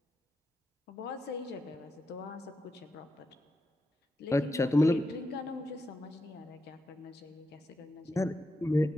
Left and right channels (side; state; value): both; normal; correlation 0.87